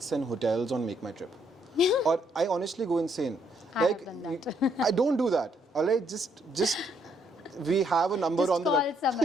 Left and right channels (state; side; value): normal; both; correlation 0.71